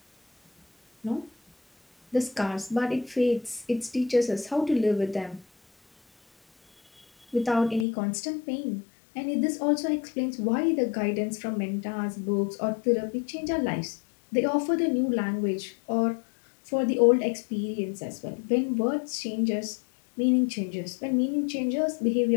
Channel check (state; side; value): drops out; right; at 7.9 s